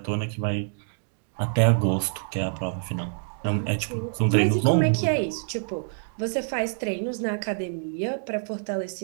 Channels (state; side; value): silent; left; digital silence